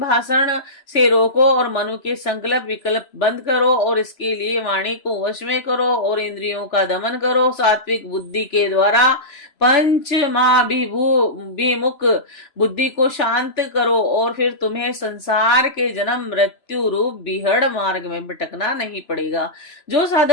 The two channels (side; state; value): right; late; 3.0 ms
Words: भाषण से रोको और मनु के संकल्प विकल्प बंद करो, और इसके लिए वाणी को वश में करो और इंद्रियों का दमन करो। सात्विक बुद्धि के द्वारा पंचमाभिमुख बुद्धि को शांत करो, और फिर तुम्हें संसार के जन्म मृत्यु रूप बिहड़ मार्ग में भटकना नहीं पड़ेगा। जो